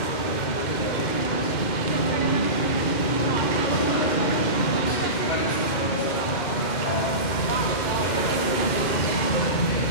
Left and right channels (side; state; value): right; late; 2.1 ms